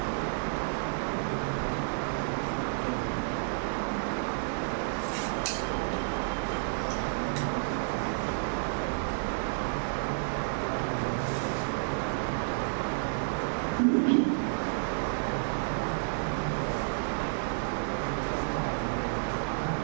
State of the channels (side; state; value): left; silent; digital silence